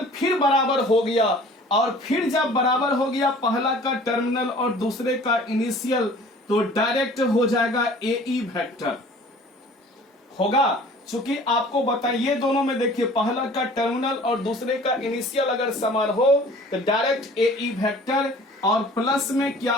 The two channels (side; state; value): both; normal; correlation 0.48